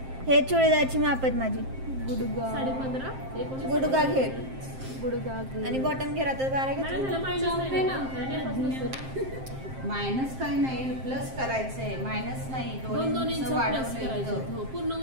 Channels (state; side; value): late; left; 7.6 ms